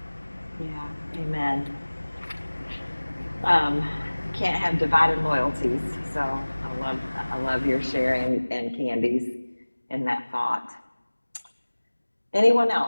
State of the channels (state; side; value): inverted; both; correlation -1.00